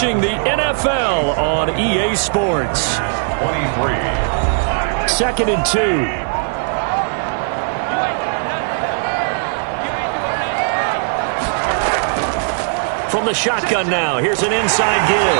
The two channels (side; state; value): left; silent; digital silence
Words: the NFL on EA Sports. 23. 2nd and 2. From the shotgun now, here's an inside give.